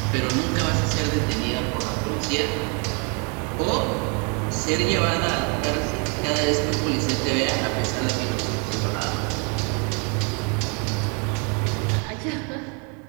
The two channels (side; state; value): left; quieter; 35.7 dB